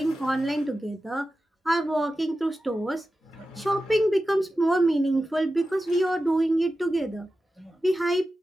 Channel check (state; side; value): normal; both; correlation 0.93